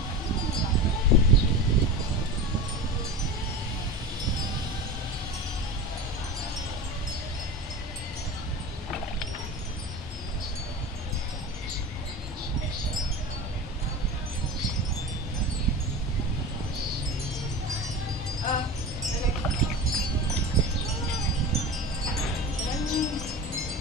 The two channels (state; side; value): normal; both; correlation 0.30